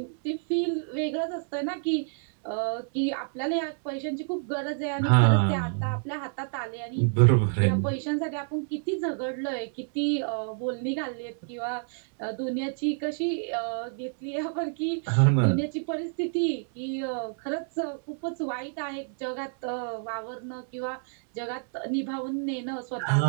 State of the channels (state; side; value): silent; left; 59 dB below the other